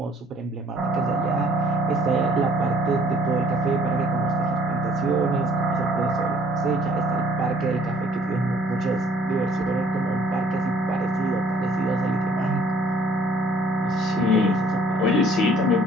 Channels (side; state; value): both; normal; correlation 0.59